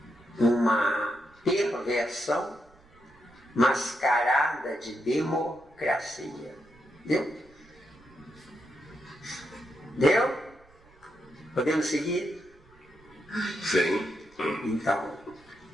uma perversão mascarada de democracia. Deu? Deu? Podemos seguir? Sim. Então,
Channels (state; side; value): noise; right; rumble, 28 dB below the sound